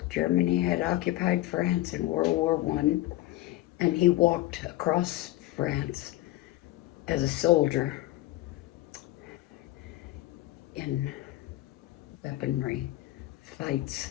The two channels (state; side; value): quieter; right; 16.5 dB